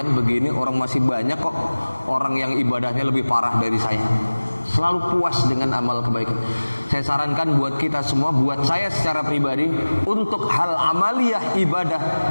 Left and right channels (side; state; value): both; inverted; correlation -1.00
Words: begini, orang masih banyak kok orang yang ibadahnya lebih parah dari saya. Selalu puas dengan amal kebaikan. Saya sarankan buat kita semua, buat saya secara pribadi, untuk hal amaliyah